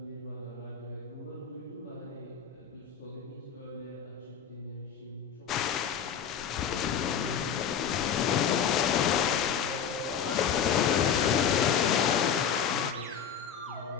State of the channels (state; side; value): quieter; right; 7.7 dB